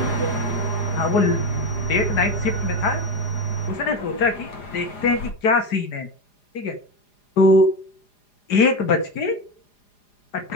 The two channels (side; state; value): right; late; 4.9 ms